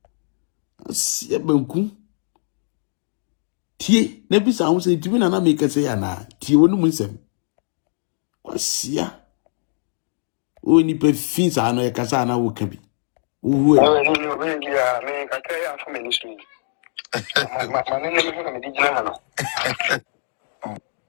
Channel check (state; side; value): silent; right; digital silence